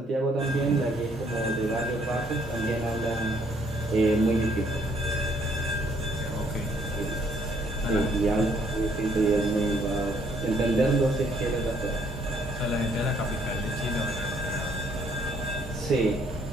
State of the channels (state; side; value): normal; both; correlation 0.66